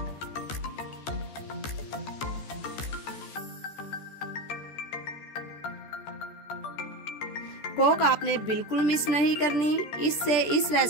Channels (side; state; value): right; late; 14 ms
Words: कोक आपने बिल्कुल मिस नहीं करनी, इससे इस